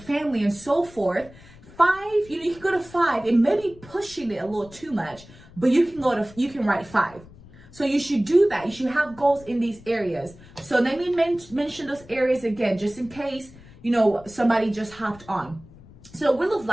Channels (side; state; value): left; noise; rumble, 21 dB below the sound